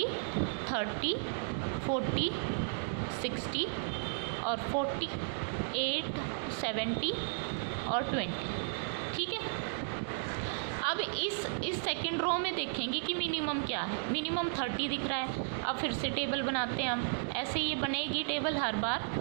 30, 40, 60 और 48, 70 और 20। ठीक है, अब इस सेकंड रो में देखेंगे कि मिनिमम क्या है, मिनिमम 30 दिख रहा है। अब फिर से टेबल बनाते हैं हम, ऐसे ये बनेगी टेबल हर बार।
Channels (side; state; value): left; silent; digital silence